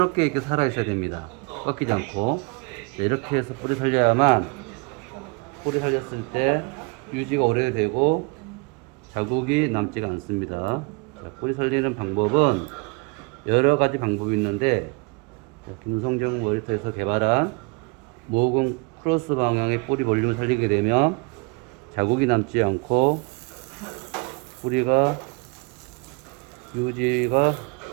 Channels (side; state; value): left; quieter; 30.1 dB